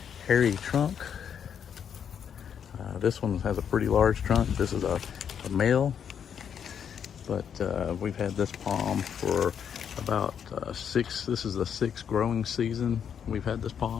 hairy trunk. This one has a pretty large trunk. This is a male, but we've had this palm for about this is the 6th growing season we've had this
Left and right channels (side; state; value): right; quieter; 8.0 dB